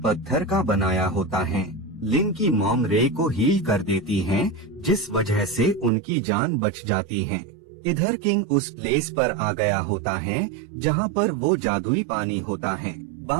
का बनाया होता है। लिन की मॉम रे को हील कर देती हैं, जिस वजह से उनकी जान बच जाती है। इधर किंग उस प्लेस पर आ गया होता है जहाँ पर वो जादुई पानी होता है।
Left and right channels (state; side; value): drops out; left; at 5.9 s